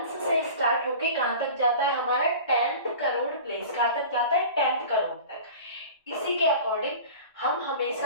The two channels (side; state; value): both; inverted; correlation -0.38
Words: से स्टार्ट होके कहां तक जाता है हमारा? 10th crore place. कहां तक जाता है? 10th करोड़ तक। इसी के अकॉर्डिंग हम